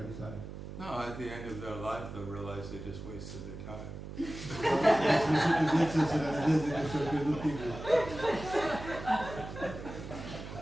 No, at the end of their life, they'll realize they just wasted their time. La sfârșitul vieții să realizeze că și-au pierdut timpul.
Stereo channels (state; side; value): noise; right; hum, 10 dB below the sound